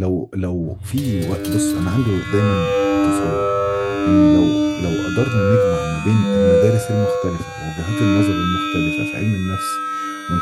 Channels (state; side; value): identical; both; correlation 1.00